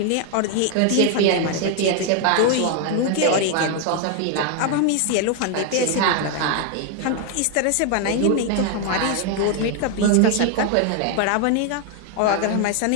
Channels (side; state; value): both; different; correlation 0.01